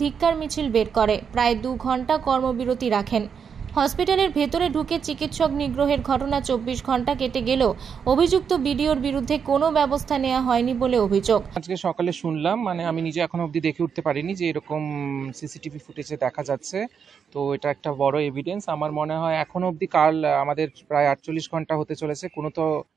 ধিক্কার মিছিল বের করে প্রায় 2 ঘন্টা কর্মবিরতি রাখেন। হসপিটালের ভেতরে ঢুকে চিকিৎসক নিগ্রহের ঘটনা 24 ঘন্টা কেটে গেলেও অভিযুক্ত বিডিওর বিরুদ্ধে কোনো ব্যবস্থা নেওয়া হয়নি বলে অভিযোগ। আজকে সকালে শুনলাম, আমি নিজে এখনো অবধি দেখে উঠতে পারিনি যে এরকম সিসিটিভি ফুটেজে দেখা যাচ্ছে। তো এটা একটা বড় এভিডেন্স। আমার মনে হয় এখনো অবধি কাল আমাদের প্রায় 48 ঘন্টা হতে চলেছে, কোনো তো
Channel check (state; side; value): quieter; left; 6.8 dB